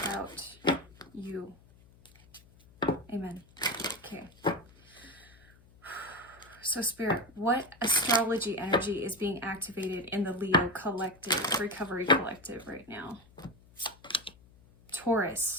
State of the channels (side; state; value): left; noise; hum, 26 dB below the sound